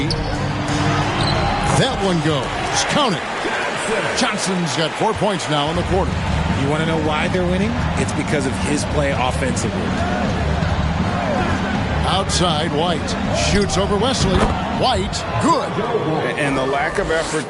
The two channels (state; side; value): identical; both; correlation 1.00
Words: That one goes. Count it. Johnson's got 4 points now in the quarter. You want to know why they're winning? It's because of his play offensively. Outside, White shoots over Wesley. White, good. And the lack of effort